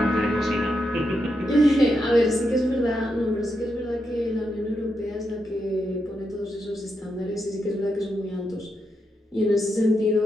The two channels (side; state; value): both; normal; correlation 0.84